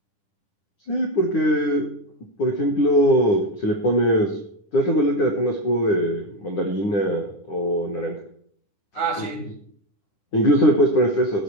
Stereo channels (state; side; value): late; right; 10 ms